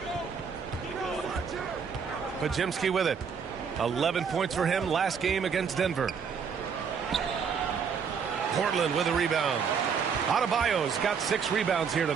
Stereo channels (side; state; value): left; quieter; 6.4 dB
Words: Podziemski with it. 11 points for him last game against Denver. Portland with a rebound. Adebayo's got 6 rebounds here